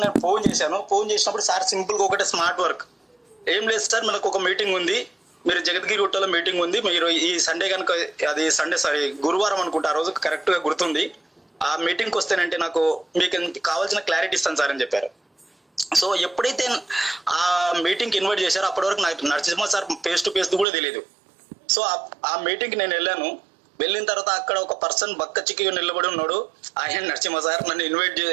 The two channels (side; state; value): left; drops out; at 20.7 s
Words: నేను ఫోన్ చేశాను. ఫోన్ చేసినప్పుడు సార్ సింపుల్గా ఒకటే స్మార్ట్ వర్క్, ఏం లేదు సార్ మనకు ఒక మీటింగ్ ఉంది, మీరు జగద్గిరి గుట్టలో మీటింగ్ ఉంది, మీరు ఈ సండే కనుక, అది సండే సారీ గురువారం అనుకుంటా, ఆ రోజు కరెక్ట్గా గుర్తుంది, ఆ మీటింగ్కి వస్తేనంటే నాకు మీకు కావాల్సిన క్లారిటీ ఇస్తాను సార్ అని చెప్పారు. సో ఎప్పుడైతే ఆ మీటింగ్కి ఇన్వైట్ చేశారో అప్పటి వరకు నాకు Narasimha sir face to face కూడా తెలియదు. సో ఆ మీటింగ్కి నేను వెళ్ళాను. వెళ్ళిన తర్వాత అక్కడ ఒక పర్సన్ బక్క చిక్కిగా నిలబడి ఉన్నాడు, ఆయన నరసింహ సార్ నన్ను ఇన్వైట్